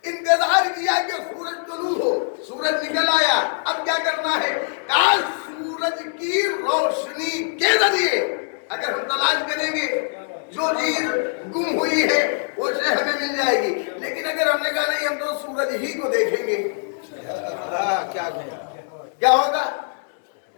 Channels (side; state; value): right; silent; digital silence